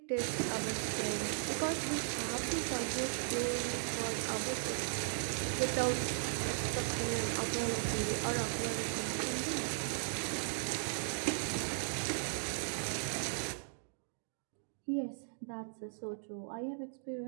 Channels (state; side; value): silent; left; digital silence